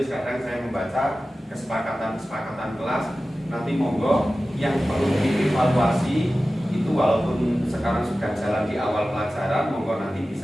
Kadang saya membaca kesepakatan kelas. Nanti monggo yang perlu dievaluasi itu, walaupun sekarang sudah jalan di awal pelajaran, monggo nanti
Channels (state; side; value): normal; both; correlation 0.95